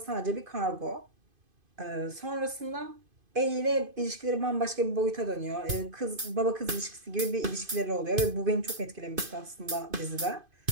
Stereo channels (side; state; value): left; late; 2.5 ms